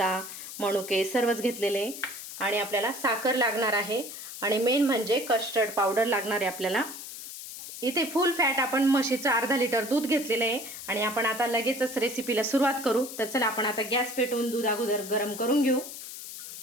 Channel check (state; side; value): noise; left; hiss, 11 dB below the sound